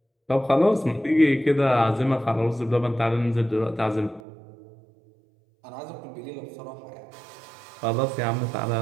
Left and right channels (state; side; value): drops out; left; at 4.2 s